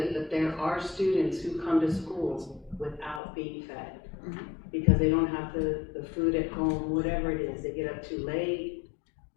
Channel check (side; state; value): right; drops out; at 3.2 s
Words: but there are students who come to school without being fed because they don't have the food at home, whatever it is, they get up too late.